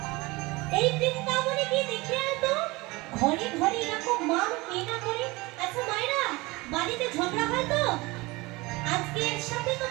এই বৃন্দাবনে গিয়ে দেখে আয় তো, ঘরে ঘরে এরকম মান কে না করে? আচ্ছা মায়েরা, বাড়িতে ঝগড়া হয় তো? আজকে এর সাথে তো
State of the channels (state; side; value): quieter; left; 22.8 dB